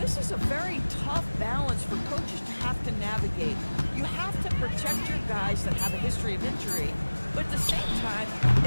is a very tough balance for coaches to have to navigate. You have to protect your guys that have a history of injury, but at the same time,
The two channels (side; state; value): both; inverted; correlation -1.00